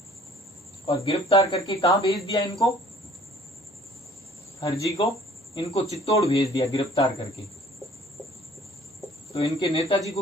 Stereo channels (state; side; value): normal; both; correlation 0.54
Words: और गिरफ्तार करके कहां भेज दिया इनको, हरजी को इनको चित्तौड़ भेज दिया गिरफ्तार करके। तो इनके नेताजी